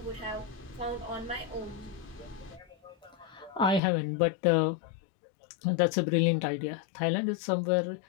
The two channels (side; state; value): right; drops out; at 3.8 s